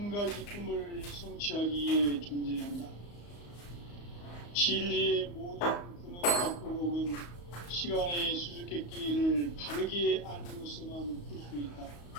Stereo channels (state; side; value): late; right; 34 ms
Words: 가지 꿈을 성취하기 위해 존재한다. 진리의 모든 근원과 의혹은 시간의 수수께끼를 바르게 알므로서만 풀 수 있다.